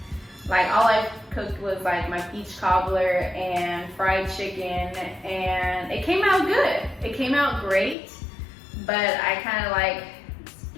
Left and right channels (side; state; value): right; drops out; at 8.0 s